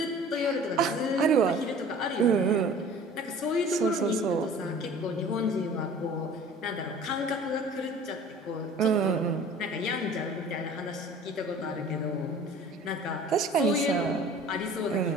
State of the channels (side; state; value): both; normal; correlation 0.46